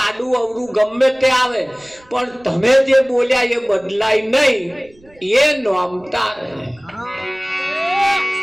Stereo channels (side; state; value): right; noise; rumble, 29 dB below the sound